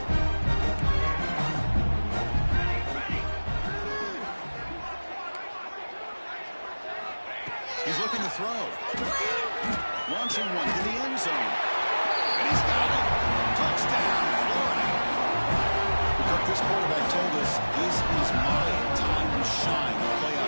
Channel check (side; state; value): both; inverted; correlation -1.00